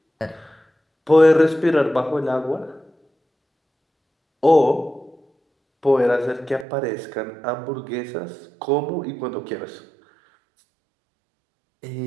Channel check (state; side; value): drops out; left; at 6.7 s